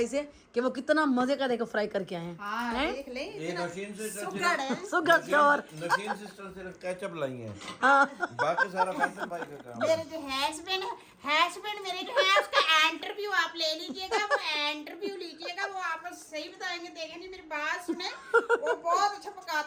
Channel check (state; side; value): identical; both; correlation 1.00